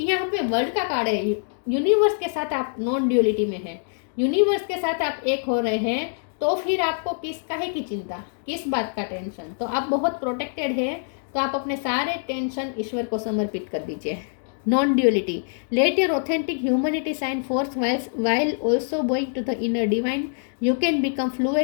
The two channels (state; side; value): silent; right; digital silence